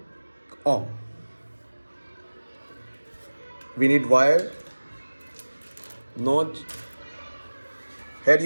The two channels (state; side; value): inverted; both; correlation -1.00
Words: ohm. We need wire, notch. Here